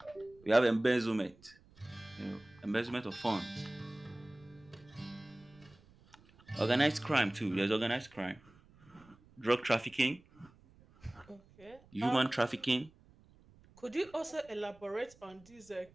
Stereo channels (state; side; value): noise; right; rumble, 26 dB below the sound